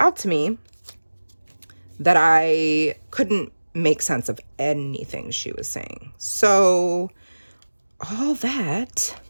to me that I couldn't make sense of anything she was saying. So all that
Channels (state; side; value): inverted; both; correlation -1.00